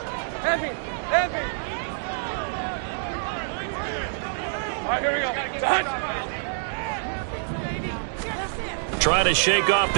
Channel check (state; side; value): silent; left; digital silence